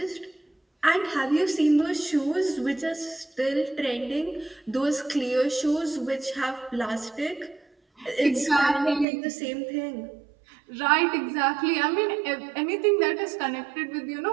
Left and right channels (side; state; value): left; drops out; at 9.1 s